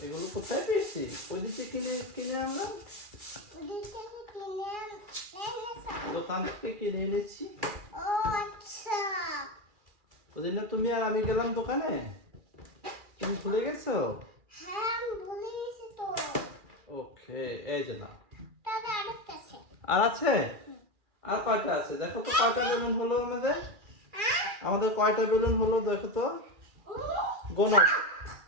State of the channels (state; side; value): late; left; 2.4 ms